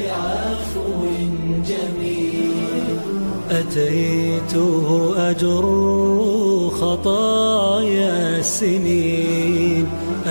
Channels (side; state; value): both; inverted; correlation -1.00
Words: جميل. أتيت أجر خطايا السنين،